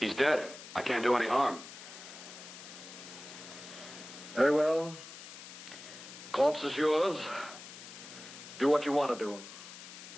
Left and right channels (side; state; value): left; noise; hiss, 14 dB below the sound